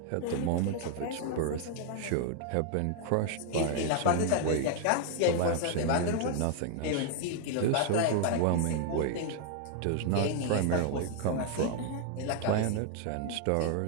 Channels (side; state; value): both; different; correlation 0.00